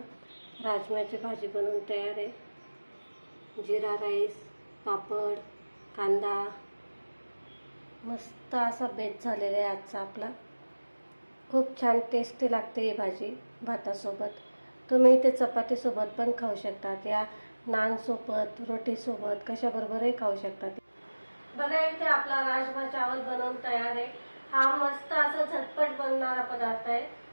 राजम्याची भाजी बनवून तयार आहे. जिरा राईस, पापड, कांदा, मस्त असा बेत झालेला आहे आजचा आपला. खूप छान टेस्टी लागते ही भाजी भातासोबत. तुम्ही इथे चपातीसोबत पण खाऊ शकतात, या नानसोबत, रोटीसोबत, कशाबरोबरही खाऊ शकतात. बघा इथे आपला राजमा चावल बनवून तयार आहे. हा मस्त असा झटपट बनणारा पदार्थ आहे.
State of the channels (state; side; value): inverted; both; correlation -1.00